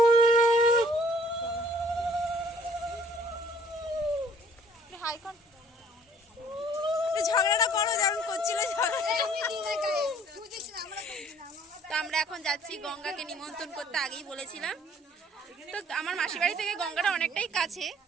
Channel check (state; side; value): normal; both; correlation 0.57